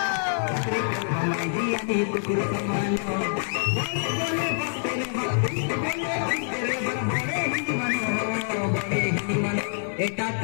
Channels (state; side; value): silent; right; digital silence